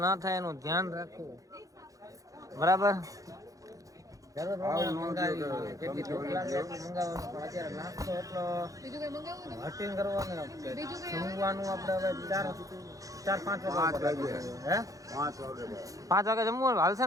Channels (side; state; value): left; late; 0.17 ms